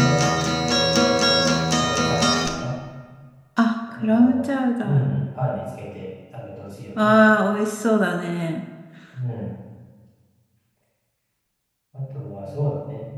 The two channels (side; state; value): both; identical; correlation 1.00